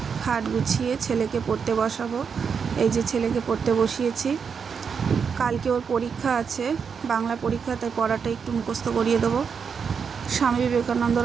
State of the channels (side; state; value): left; quieter; 6.3 dB